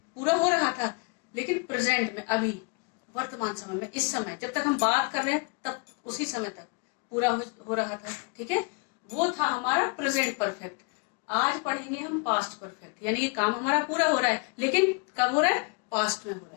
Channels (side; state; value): right; quieter; 33.5 dB